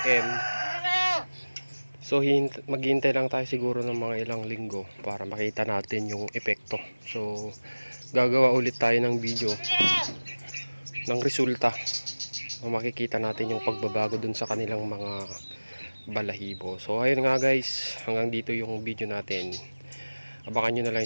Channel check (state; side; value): inverted; both; correlation -1.00